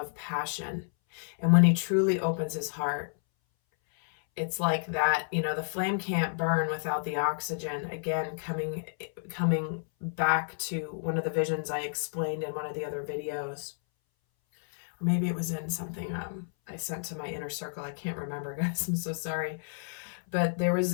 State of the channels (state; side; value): silent; right; 57 dB below the other